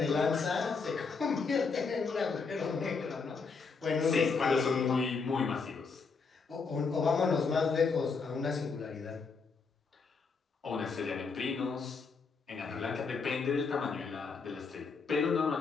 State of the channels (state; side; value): quieter; right; 4.8 dB